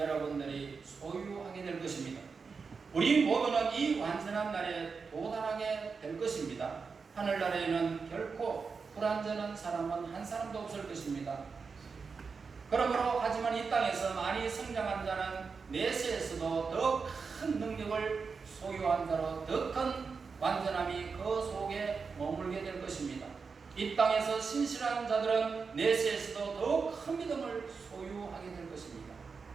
소유하게 될 것입니다. 우리 모두는 이 완전한 날에 도달하게 될 것입니다. 하늘나라에는 결코 불완전한 사람은 한 사람도 없을 것입니다. 그러므로 하지만 이 땅에서 많이 성장한 자는 내세에서도 더 큰 능력을 소유한 자로 더 큰 완전함이 그 속에 머물게 될 것입니다. 이 땅에서 신실한 자들은 내세에서도 더 큰 믿음을 소유하게 될 것입니다.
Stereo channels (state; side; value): quieter; left; 5.1 dB